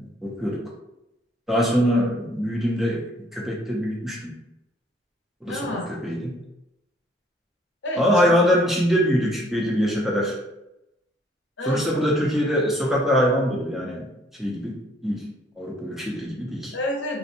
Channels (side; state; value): both; normal; correlation 0.62